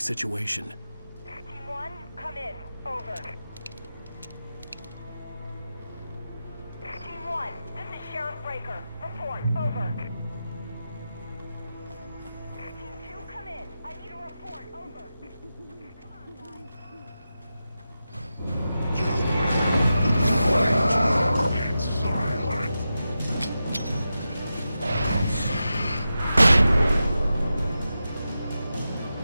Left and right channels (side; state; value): both; inverted; correlation -0.91